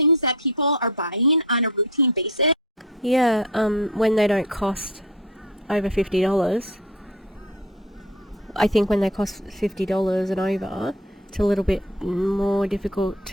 that people are buying on a routine basis. Yeah, when they don't cost over $50. I think when they cost $50 and over, it's a little bit more difficult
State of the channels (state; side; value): normal; both; correlation 0.37